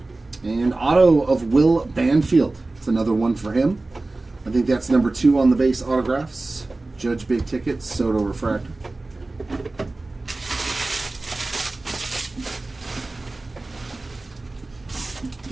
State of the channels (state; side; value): quieter; left; 3.1 dB